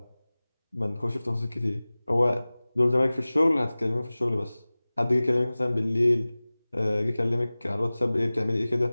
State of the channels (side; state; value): both; inverted; correlation -0.99